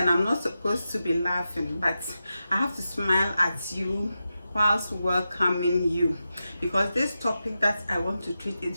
I'm not supposed to be laughing, but I have to smile at you whilst welcoming you, because this topic that I want to treat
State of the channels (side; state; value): both; inverted; correlation -0.90